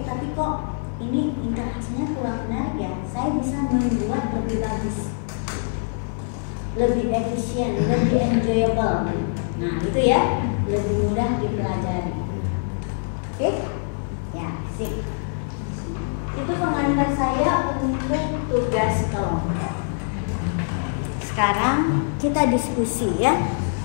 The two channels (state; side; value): silent; right; digital silence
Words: tapi kok ini interaksinya kurang menarik ya. Saya bisa membuat lebih bagus, lebih efisien, lebih enjoyable. Nah itu ya, lebih mudah dipelajari. Oke? Ya, sip. Itu pengantar saya untuk tugas kelompok. Sekarang kita diskusi ya